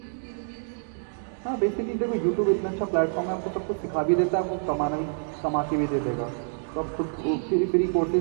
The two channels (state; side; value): silent; left; 60 dB below the other